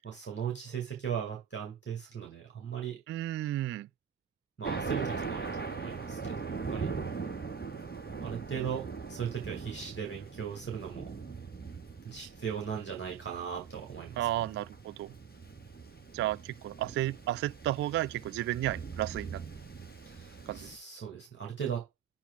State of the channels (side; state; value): left; quieter; 8.6 dB